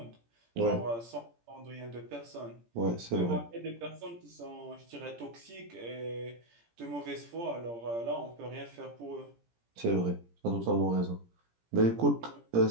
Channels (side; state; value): left; late; 17 ms